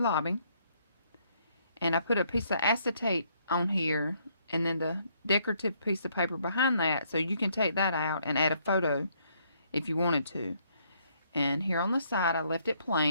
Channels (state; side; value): inverted; both; correlation -0.69